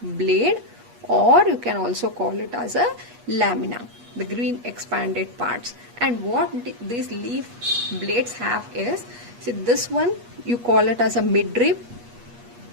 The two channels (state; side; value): late; left; 8.3 ms